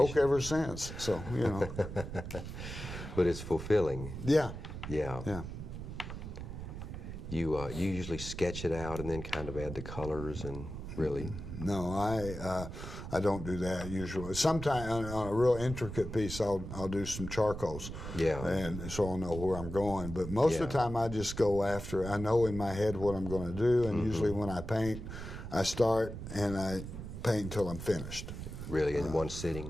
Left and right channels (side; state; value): right; noise; rumble, 8 dB below the sound